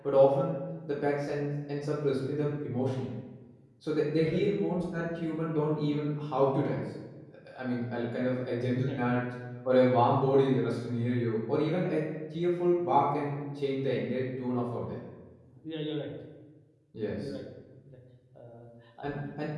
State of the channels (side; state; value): both; identical; correlation 1.00